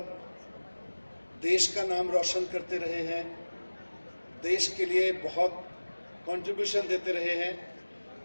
देश का नाम रोशन करते रहे हैं, देश के लिए बहुत कंट्रीब्यूशन देते रहे हैं।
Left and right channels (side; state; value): both; inverted; correlation -1.00